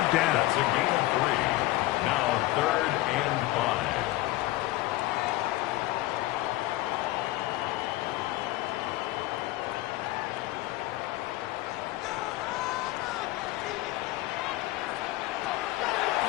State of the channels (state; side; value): quieter; right; 17.7 dB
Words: down. That's a gain of 3. Now 3rd and